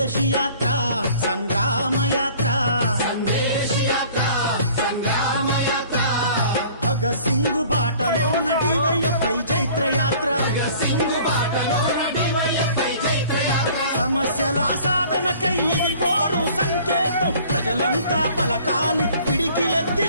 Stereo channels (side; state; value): both; inverted; correlation -0.51